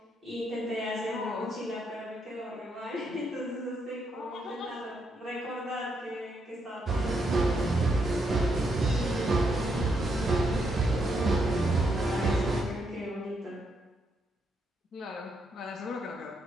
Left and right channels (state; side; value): normal; both; correlation 0.78